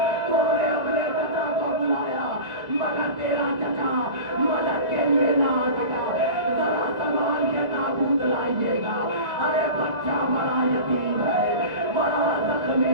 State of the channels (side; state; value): left; late; 1.9 ms